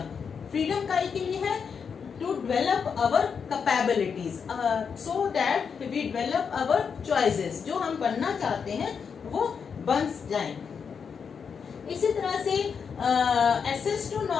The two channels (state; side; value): quieter; right; 6.4 dB